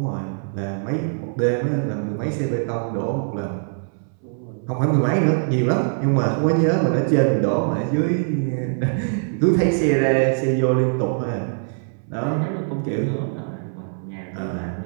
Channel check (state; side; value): silent; left; 64 dB below the other